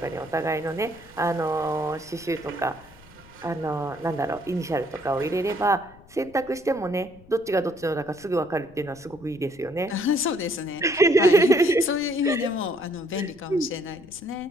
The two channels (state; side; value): noise; left; rumble, 24 dB below the sound